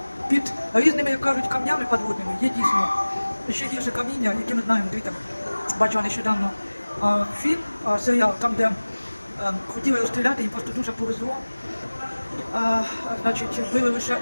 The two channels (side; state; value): both; inverted; correlation -1.00